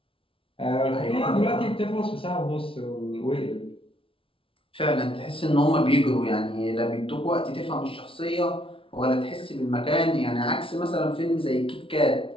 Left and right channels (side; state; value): right; late; 0.26 ms